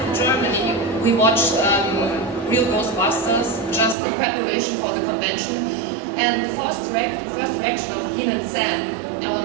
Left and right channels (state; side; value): drops out; left; at 4.0 s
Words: Germany, we watched Real Ghostbusters just in preparation for the convention. And the first reaction of Dean and Sam,